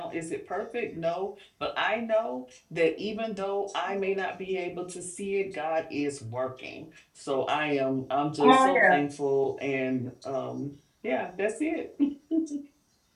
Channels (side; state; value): both; identical; correlation 1.00